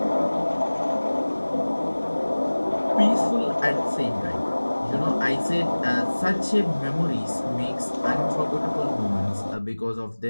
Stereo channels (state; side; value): inverted; both; correlation -1.00